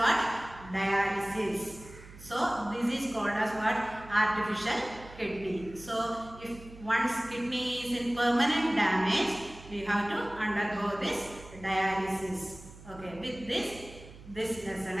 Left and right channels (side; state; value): right; noise; hum, 18 dB below the sound